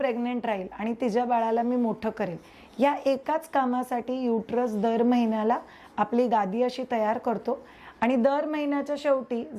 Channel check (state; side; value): identical; both; correlation 1.00